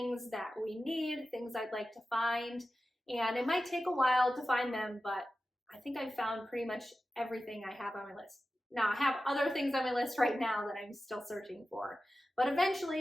that we need, things I'd like to find. And it might take a while to find them, but I think I've found pretty much everything I have on my list. Now, I have other things on my list right now that I'm still searching for, but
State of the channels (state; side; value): normal; both; correlation 0.94